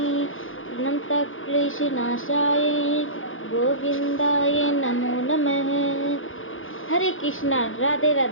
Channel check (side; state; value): right; late; 0.59 ms